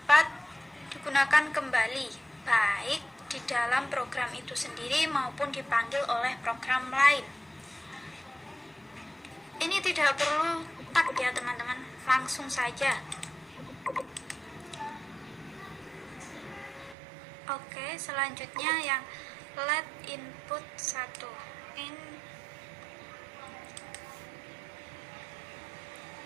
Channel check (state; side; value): drops out; left; at 16.9 s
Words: digunakan kembali, baik di dalam program itu sendiri maupun dipanggil oleh program lain. Ini tidak perlu tag ya teman-teman, langsung saja. Oke, selanjutnya yang let input 1